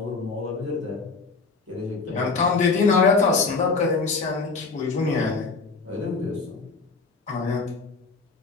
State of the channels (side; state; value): right; quieter; 4.3 dB